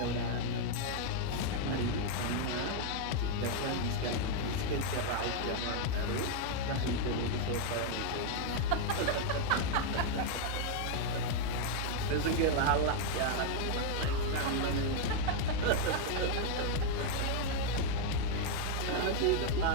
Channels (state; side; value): different; both; correlation 0.00